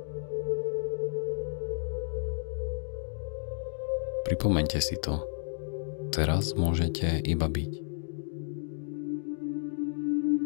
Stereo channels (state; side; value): silent; right; digital silence